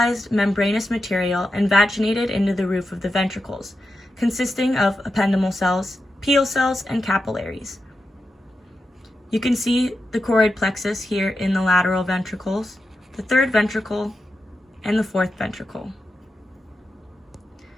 membranous material invaginated into the roof of the ventricles, consisting of ependymal cells, pial cells, and capillaries. You can see the choroid plexus here in the lateral ventricles, the third ventricle, and the fourth ventricle.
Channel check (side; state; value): both; normal; correlation 0.89